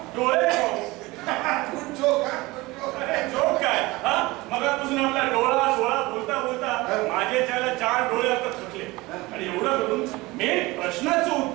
डोळे. जोक काय? मगापासून आपला डोळा सोळा बोलता माझे त्याला 4 डोळे आता थकले आणि एवढं करून मेन प्रश्नाचं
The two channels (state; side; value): quieter; left; 21.3 dB